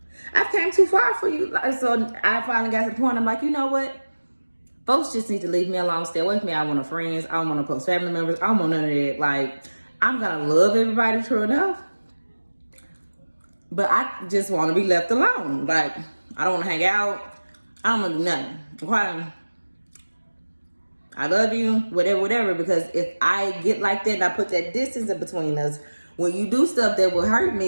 I've came too far for you. So I finally got to the point, I'm like, you know what? Folks just need to leave me alone, stay away from me. I don't want no friends. I don't want no close family members. I don't want none of that. Like, I'm gonna love everybody, true enough, but I just want to be left alone. Like, I don't want to hang out. I don't want to do nothing. Okay? I love you, whatever, because if I get like that and I put that distance in between us, when you do stuff that will hurt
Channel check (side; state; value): both; inverted; correlation -1.00